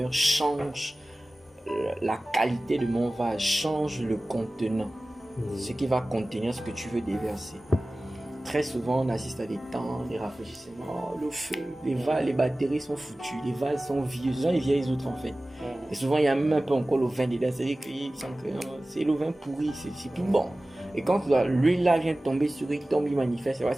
change la qualité de mon vase, change le contenant. Ce qui va contenir ce que tu veux déverser. Très souvent, on assiste à des temps, des rafraîchissements, le feu, les batteries sont foutues, les vases sont vieux, ce sont les vieilles autres en fait. Et souvent, il y a même un peu encore le vin dedans, c'est-à-dire que c'est le vin pourri, c'est plus bon. Et quand l'huile là vient tomber sur lui, tombe, il manifeste,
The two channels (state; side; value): normal; both; correlation 0.97